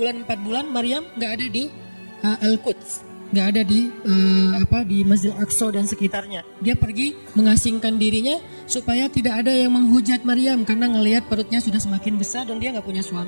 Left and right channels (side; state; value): both; inverted; correlation -1.00